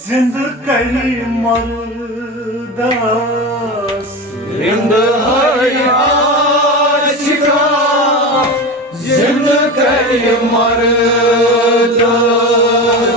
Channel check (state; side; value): normal; both; correlation 0.25